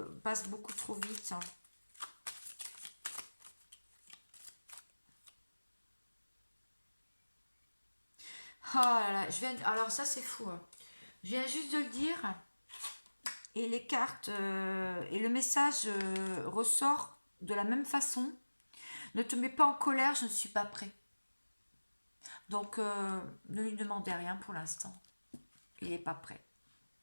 beaucoup trop vite. Oh là là, alors ça c'est fou, hein. Je viens juste de le dire, et les cartes et le message ressort de la même façon. Ne te mets pas en colère, je ne suis pas prêt. Donc ne lui demandez rien pour l'instant. Il n'est pas prêt.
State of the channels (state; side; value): inverted; both; correlation -1.00